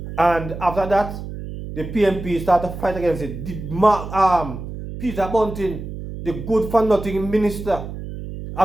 And after that, the PNP started to fight against it. Peter Bunting, the good for nothing minister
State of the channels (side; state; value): right; noise; hum, 9 dB below the sound